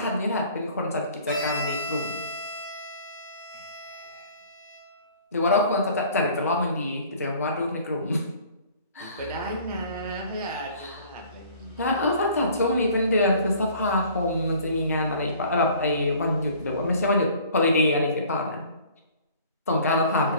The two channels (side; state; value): both; inverted; correlation -0.52